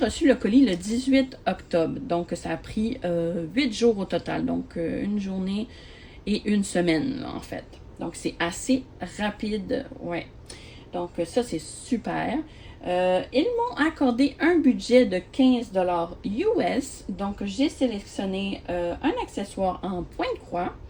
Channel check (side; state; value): both; identical; correlation 1.00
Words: le colis le 18 octobre, donc ça a pris 8 jours au total, donc une journée et une semaine là, en fait. Donc c'est assez rapide, ouais. Donc ça c'est super. Ils m'ont accordé un budget de 15 $ US, donc j'ai sélectionné un accessoire en point de croix